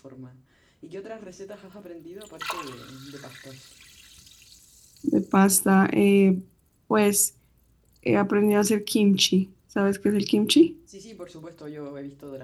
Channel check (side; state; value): both; identical; correlation 1.00